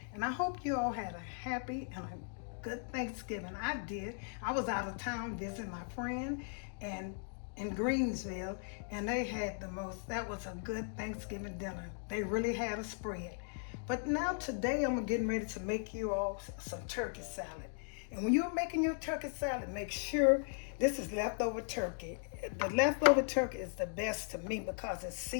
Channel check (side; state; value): right; silent; 53 dB below the other